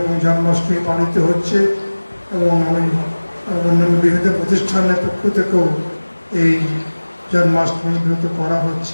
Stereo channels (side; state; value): both; inverted; correlation -1.00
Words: জন্মাষ্টমী পালিত হচ্ছে এবং অন্যান্য বিভিন্ন প্রতিষ্ঠানের পক্ষ থেকেও এই জন্মাষ্টমী ব্রত করা